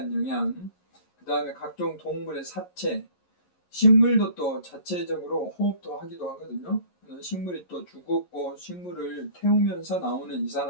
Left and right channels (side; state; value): right; late; 11 ms